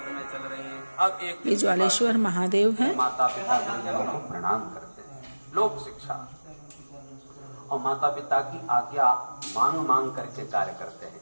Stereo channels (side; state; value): both; inverted; correlation -1.00